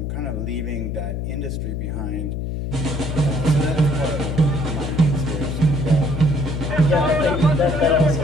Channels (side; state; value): left; noise; hum, 3 dB below the sound